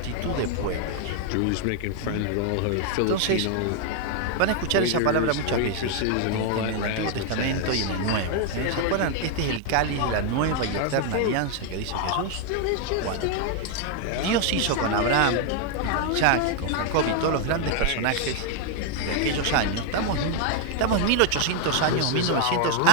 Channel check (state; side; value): different; both; correlation 0.00